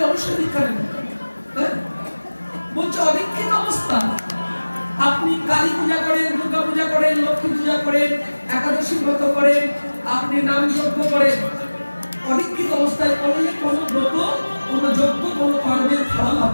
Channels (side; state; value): both; inverted; correlation -1.00